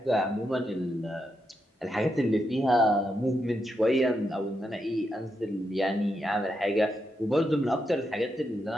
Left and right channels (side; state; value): both; normal; correlation 0.83